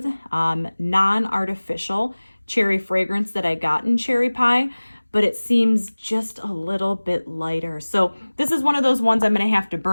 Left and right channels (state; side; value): inverted; both; correlation -1.00